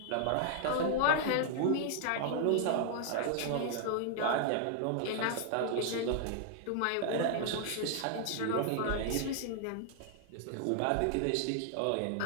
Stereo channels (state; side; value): different; both; correlation 0.00